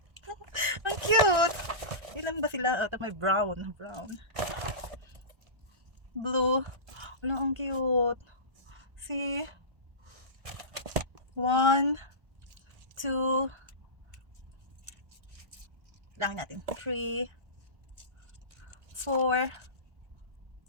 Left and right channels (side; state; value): left; late; 1.4 ms